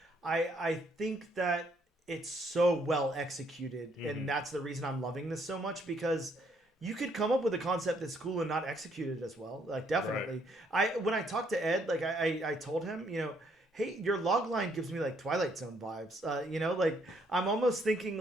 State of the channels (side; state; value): both; normal; correlation 0.69